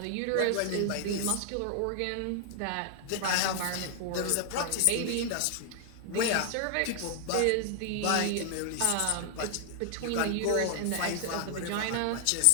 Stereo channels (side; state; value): both; different; correlation 0.00